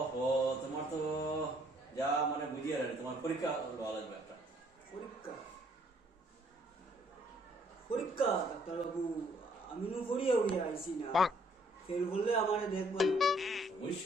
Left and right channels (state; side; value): normal; both; correlation 0.65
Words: তোমার তো যা মানে বুঝিয়ে রাখে, তোমার পরীক্ষা দেওয়া লাগবে একটা। পরীক্ষা পরীক্ষা ডাক্তারবাবু আমি নু পড়িয়া উড়িয়া আইছি না, ফেল করলে আমারে দেখবেন।